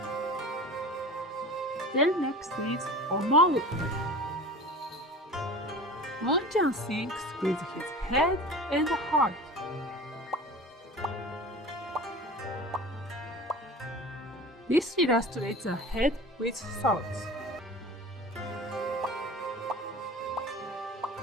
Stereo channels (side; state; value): both; normal; correlation 0.37